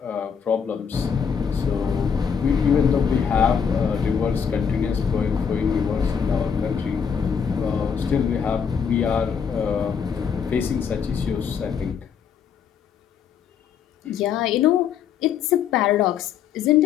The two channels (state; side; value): quieter; right; 7.1 dB